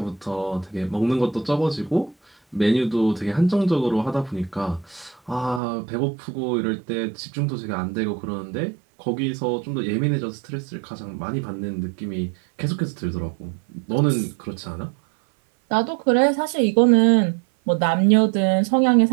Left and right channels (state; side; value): drops out; left; at 5.6 s